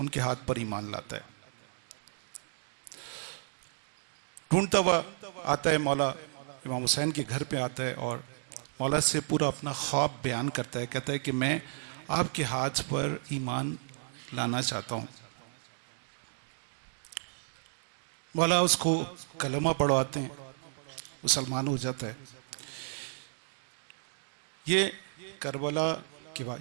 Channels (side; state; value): left; silent; digital silence